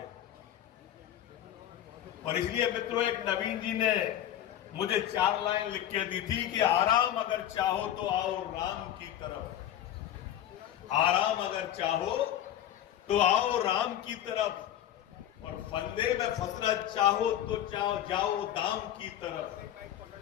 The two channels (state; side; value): quieter; right; 11.3 dB